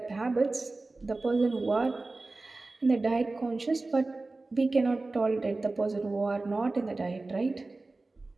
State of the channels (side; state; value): left; quieter; 3.3 dB